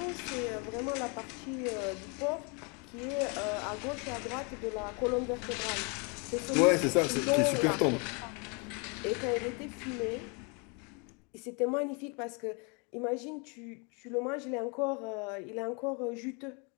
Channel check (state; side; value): quieter; right; 33.4 dB